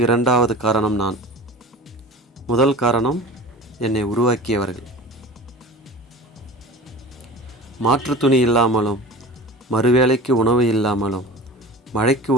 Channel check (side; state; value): both; normal; correlation 0.36